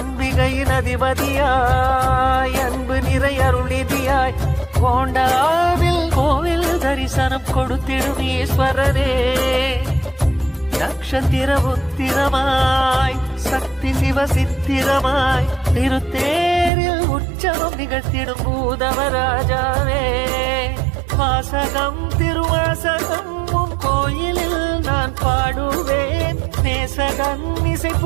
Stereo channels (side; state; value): left; drops out; at 16.7 s